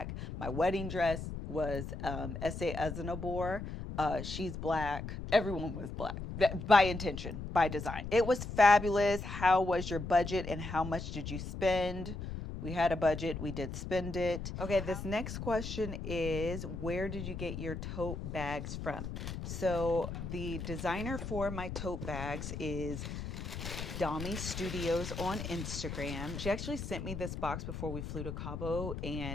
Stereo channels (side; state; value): left; noise; rumble, 6 dB below the sound